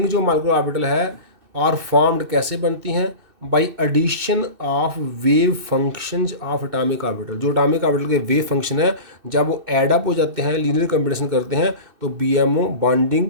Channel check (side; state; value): left; late; 2.6 ms